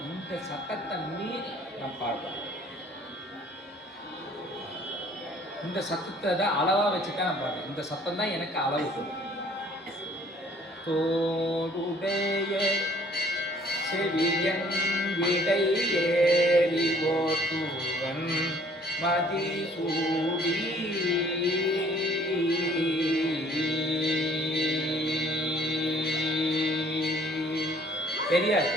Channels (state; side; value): normal; both; correlation 0.58